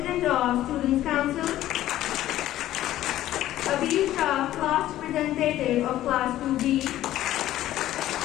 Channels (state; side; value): quieter; right; 13.8 dB